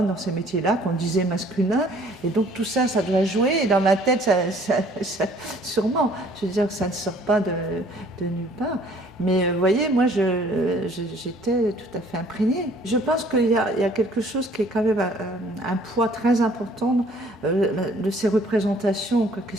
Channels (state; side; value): normal; both; correlation 0.57